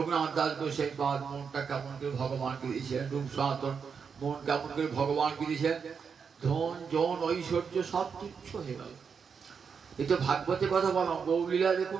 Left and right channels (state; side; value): quieter; left; 6.2 dB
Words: দাস গোসাই পাদ মনটা কেমন করে ভগবানকে দিয়েছিলেন, রূপ সনাতন মন কেমন করে ভগবানকে দিয়েছেন, ধন জন ঐশ্বর্য সব তুচ্ছ হয়ে গেল। এই তো ভাগবতে কথা বললাম, গৌলীলা